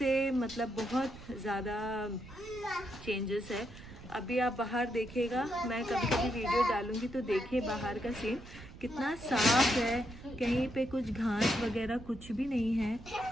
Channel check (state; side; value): noise; right; rumble, 17 dB below the sound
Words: मतलब बहुत ज़्यादा चेंजेस है। अभी आप बाहर देखिएगा, मैं कभी कभी वीडियो डालूंगी तो देखिए बाहर का सीन कितना साफ है, कहीं पे कुछ घास वगैरह कुछ भी नहीं है